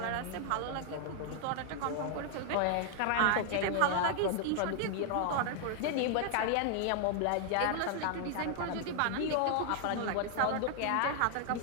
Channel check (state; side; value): different; both; correlation 0.00